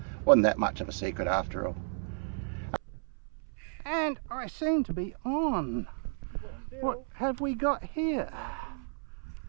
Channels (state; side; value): silent; left; 56 dB below the other